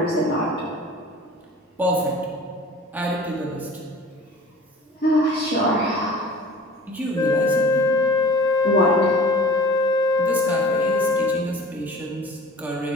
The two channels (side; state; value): both; normal; correlation 0.44